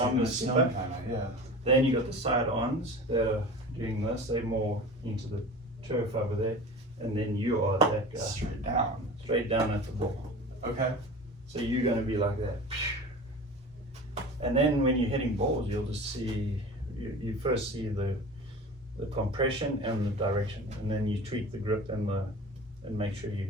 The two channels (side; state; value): both; normal; correlation 0.36